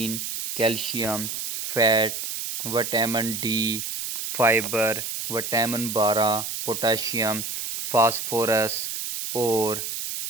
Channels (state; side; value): noise; right; hiss, 4 dB below the sound